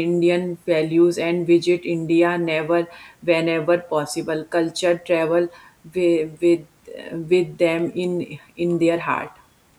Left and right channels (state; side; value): identical; both; correlation 1.00